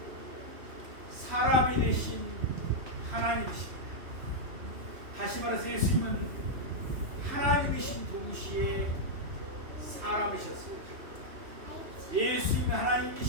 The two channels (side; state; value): left; late; 3.1 ms